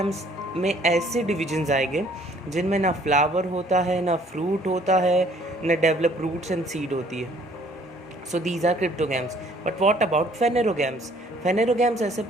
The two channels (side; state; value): both; normal; correlation 0.59